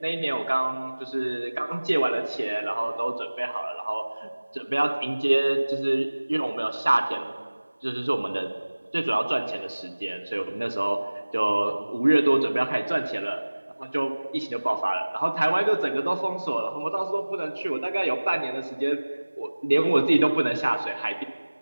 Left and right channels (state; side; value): inverted; both; correlation -1.00